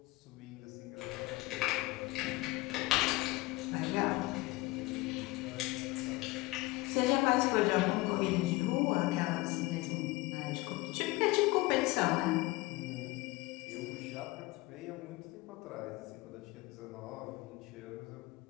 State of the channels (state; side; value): quieter; right; 21.3 dB